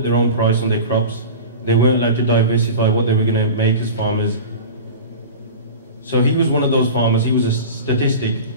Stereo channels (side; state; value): both; inverted; correlation -0.33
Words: their own price on their crops. They weren't allowed to diversify what they were going to make as farmers. So he was one of those farmers. He was a statistic,